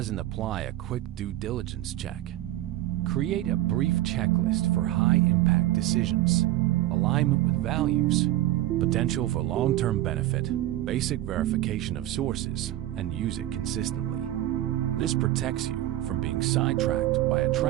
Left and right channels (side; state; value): left; quieter; 14.8 dB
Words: and apply a quick due diligence check. Create a brief checklist for high-impact decisions, alignment with values, potential for long-term benefit, basic verification of sources, and use it consistently. This protects you from being sidetracked by